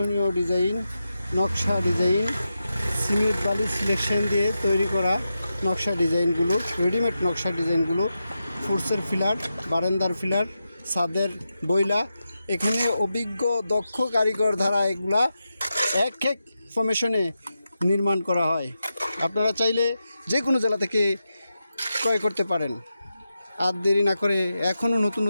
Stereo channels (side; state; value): both; inverted; correlation -0.89